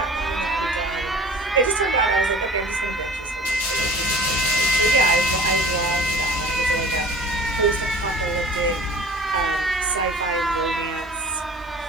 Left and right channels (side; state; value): both; normal; correlation 0.43